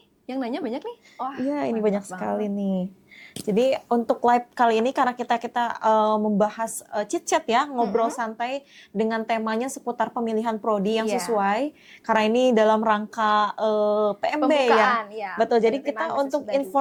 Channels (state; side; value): identical; both; correlation 1.00